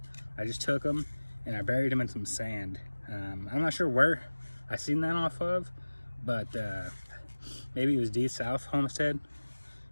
I just took them and I buried them in some sand. I'm not sure where I seen that off of, but maybe it was D South Homestead.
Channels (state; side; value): inverted; both; correlation -1.00